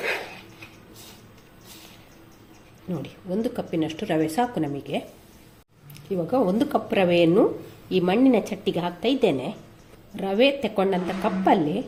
ನೋಡಿ, 1 ಕಪ್ಪಿನಷ್ಟು ರವೆ ಸಾಕು ನಮಗೆ. ಇವಾಗ 1 ಕಪ್ ರವೆಯನ್ನು ಈ ಮಣ್ಣಿನ ಚಟ್ಟಿಗೆ ಹಾಕ್ತಾ ಇದ್ದೇನೆ. ರವೆ ತಗೊಂಡಂಥ ಕಪ್ಪಲ್ಲಿ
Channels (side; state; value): both; identical; correlation 1.00